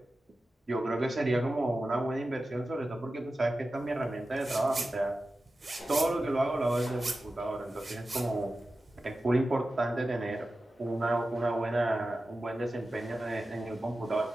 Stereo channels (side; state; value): both; normal; correlation 0.94